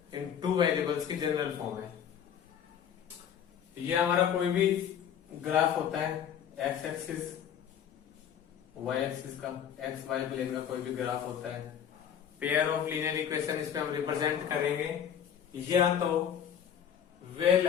in 2 variables की जनरल फॉर्म है। ये हमारा कोई भी ग्राफ होता है, एक्स एक्सिस वाई एक्सिस का, एक्स वाई प्लेन का कोई भी ग्राफ होता है, पेयर ऑफ लीनियर इक्वेशन इस पे हम रिप्रेजेंट करेंगे। या तो वे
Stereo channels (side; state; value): right; quieter; 8.8 dB